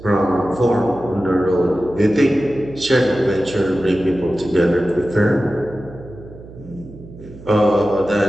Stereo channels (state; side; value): noise; right; hum, 17 dB below the sound